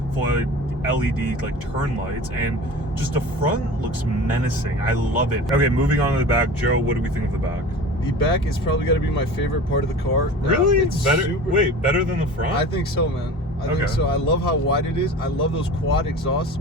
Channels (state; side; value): normal; both; correlation 0.37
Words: full LED like turn lights, and just the front looks menacing. I love it. Okay, moving on to the back. Joe, what do we think of the back? The back is probably got to be my favorite part of the car. Really? It's better. Wait, better than the front? I think so, man. I think so. I love how wide it is. I love those quad exhausts,